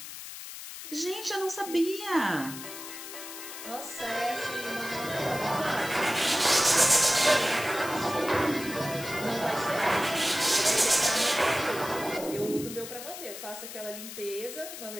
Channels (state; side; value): noise; left; hiss, 11 dB below the sound